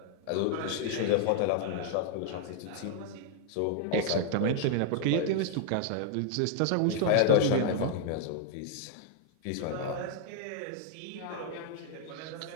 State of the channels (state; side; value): different; both; correlation 0.00